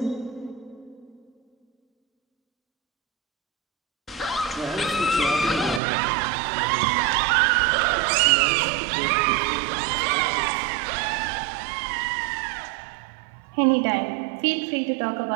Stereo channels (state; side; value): drops out; left; at 5.8 s